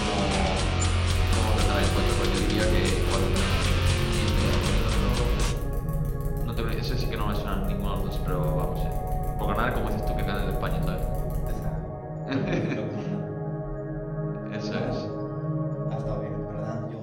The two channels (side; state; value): both; identical; correlation 1.00